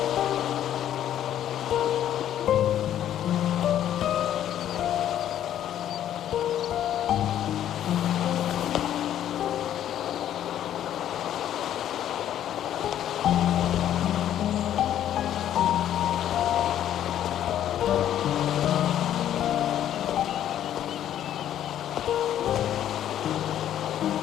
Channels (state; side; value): quieter; right; 11.1 dB